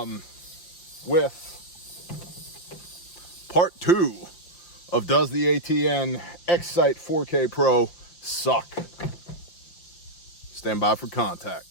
With part 2 of Does the ATN X-SIGHT 4K Pro Suck? Stand by for contact.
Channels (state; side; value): late; right; 5.7 ms